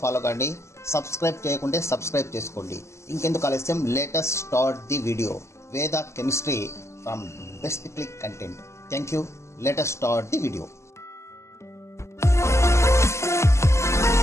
ఫాలో కండి. సబ్స్క్రైబ్ చేయకుంటే సబ్స్క్రైబ్ చేసుకోండి. ఇంకెందుకు ఆలస్యం, లేటెస్ట్ స్టార్ట్ ది వీడియో. వేద chemistry from best click content. Thank you. Latest start the video.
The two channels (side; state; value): right; late; 0.13 ms